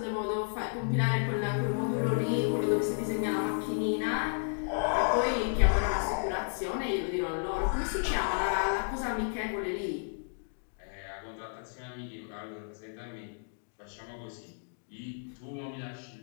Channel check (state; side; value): silent; right; digital silence